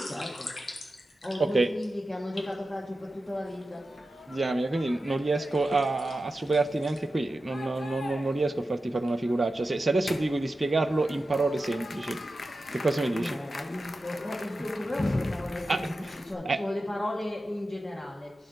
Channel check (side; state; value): both; normal; correlation 0.92